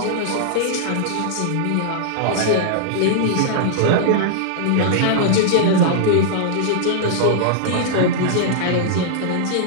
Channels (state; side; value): different; both; correlation -0.01